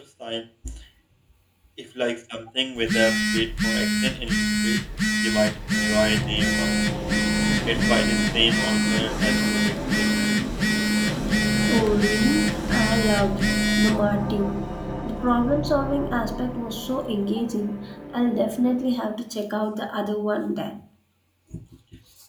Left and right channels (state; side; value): identical; both; correlation 1.00